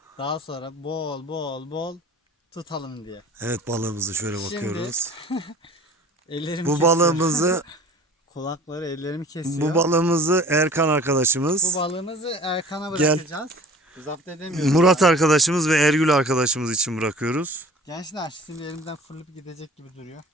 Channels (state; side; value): normal; both; correlation 0.46